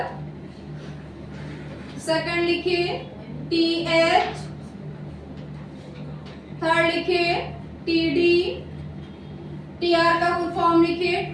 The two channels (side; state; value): both; identical; correlation 1.00